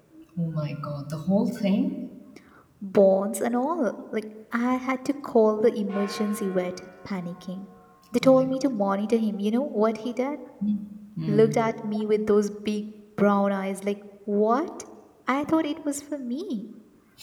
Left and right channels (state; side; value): identical; both; correlation 1.00